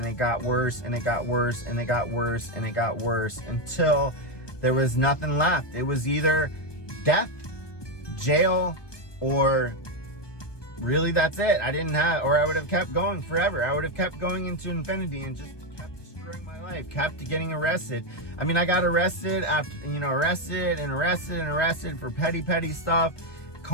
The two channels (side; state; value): right; late; 1.2 ms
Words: it got worse, and it got worse, and it got worse, and it got worse, until there was nothing left. It was either death, jail, or really that's it. I didn't have, or I would have kept going forever. I would have kept going into infinity and just kept destroying my life, kept getting arrested. I mean, I got arrested after, arrested for petty stuff,